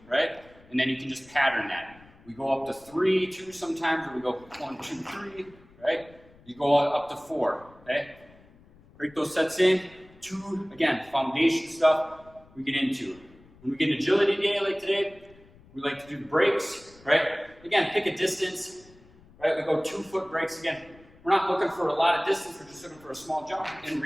right? And then you can just pattern that. We go up to 3, 2 sometimes, or we go 1, 2, 3, right? You go up to 4, okay? Break those sets in. 2, again, foundation stuff. we get into. When we get an agility day like today, we like to do the breaks, right? Again, pick a distance, right? We go 2-foot breaks again. We're not looking for a lot of distance, we're just looking for a small jump and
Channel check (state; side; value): noise; left; rumble, 26 dB below the sound